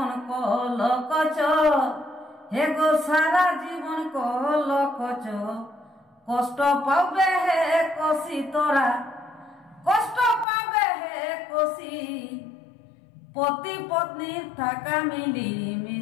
কলকচ, হে গো সারা জীবন কলকচ। কষ্ট পাবে হে কষি তোরা, কষ্ট পাবে হে কষি। পতি পত্নী থাকা মিলি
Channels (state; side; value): drops out; right; at 10.5 s